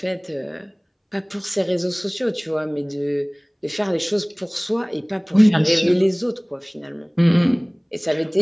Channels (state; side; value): identical; both; correlation 1.00